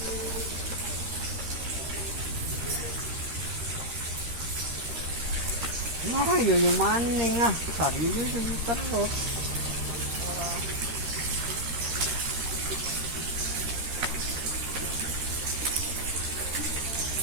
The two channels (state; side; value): late; left; 13 ms